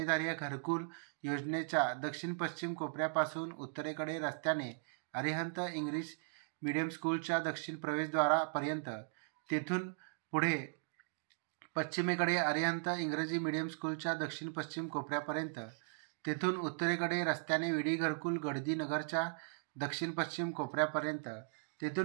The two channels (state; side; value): silent; left; digital silence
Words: घरकुल योजनेच्या दक्षिण पश्चिम कोपऱ्यापासून उत्तरेकडे रस्त्याने अरिहंत इंग्लिश मीडियम स्कूलच्या दक्षिण प्रवेशद्वारापर्यंत, तेथून पुढे पश्चिमेकडे अरिहंत इंग्रजी मीडियम स्कूलच्या दक्षिण पश्चिम कोपऱ्यापर्यंत, तेथून उत्तरेकडे रस्त्याने विडी घरकुल गडदी नगरच्या दक्षिण पश्चिम कोपऱ्यापर्यंत,